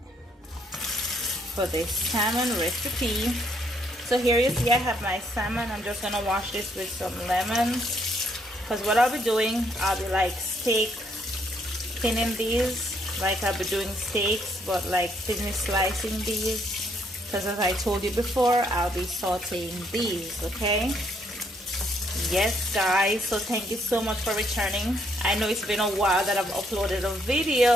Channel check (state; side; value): normal; both; correlation 0.71